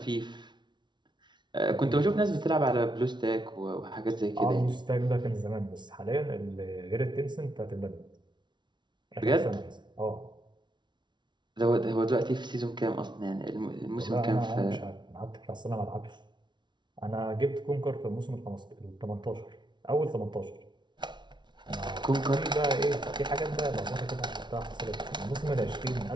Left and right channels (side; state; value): left; late; 0.22 ms